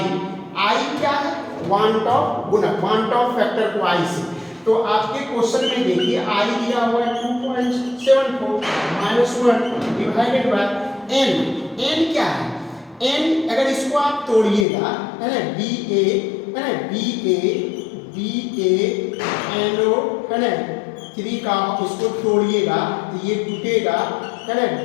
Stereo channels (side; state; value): right; drops out; at 14.7 s